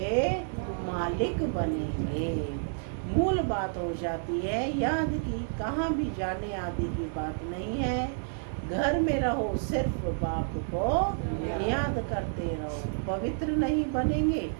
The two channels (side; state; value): left; silent; digital silence